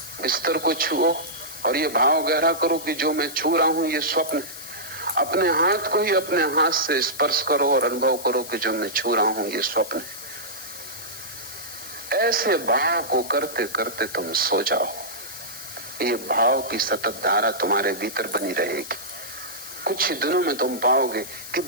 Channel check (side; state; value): left; noise; hiss, 12 dB below the sound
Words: बिस्तर को छुओ और ये भाव गहरा करो कि जो मैं छू रहा हूं ये स्वप्न है। अपने हाथ को ही अपने हाथ से स्पर्श करो और अनुभव करो कि जो मैं छू रहा हूं ये स्वप्न है। ऐसे भाव को करते करते तुम सो जाओ। ये भाव की सतत धारा तुम्हारे भीतर बनी रहेगी। कुछ ही दिनों में तुम पाओगे कि